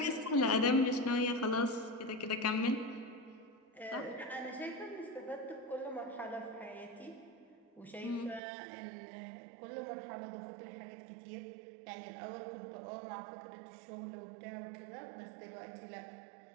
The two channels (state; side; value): drops out; left; at 8.4 s